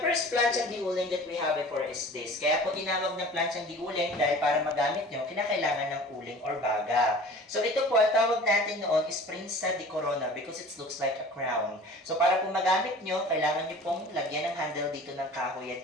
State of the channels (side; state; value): both; normal; correlation 0.43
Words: plancha di uling that we have before is this. Kaya po tinawag na plancha di uling dahil para magamit nyo, kinakailangan ng uling or baga. So ito po, ang tawag natin noon is Prinsa di Corona because it looks like a crown. So para po magamit nyo, kailangan nyo pong lagyan ng handle dito ng kahoy